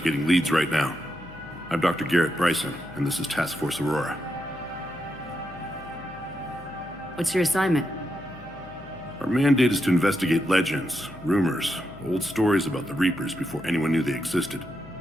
leads right now. I'm Dr. Garrett Bryson, and this is Task Force Aurora. What's your assignment? Our mandate is to investigate legends, rumors, old stories about the Reapers before anyone knew they existed.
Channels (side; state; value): left; noise; hum, 18 dB below the sound